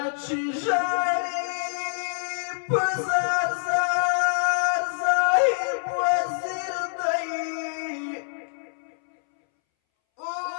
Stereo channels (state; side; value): silent; right; 61 dB below the other